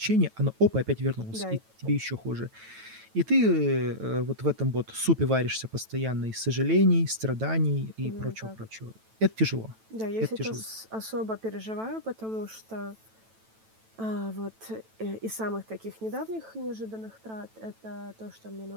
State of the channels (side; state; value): left; late; 9.1 ms